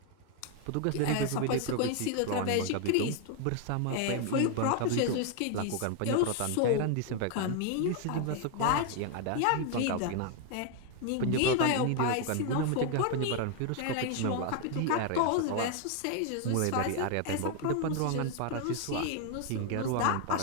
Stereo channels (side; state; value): both; different; correlation 0.01